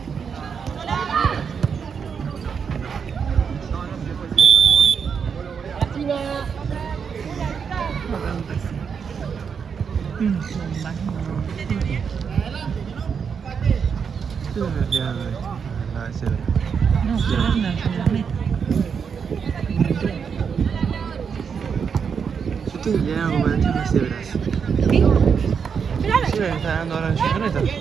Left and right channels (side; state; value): left; quieter; 6.5 dB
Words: No, Yo te diría como de las cebras. ¿qué? Sí, me está dando ahora en su camioneta.